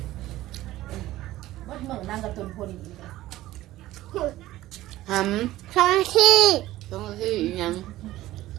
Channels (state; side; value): quieter; left; 15.8 dB